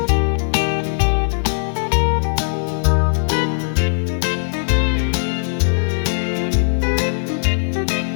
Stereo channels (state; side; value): silent; right; 65 dB below the other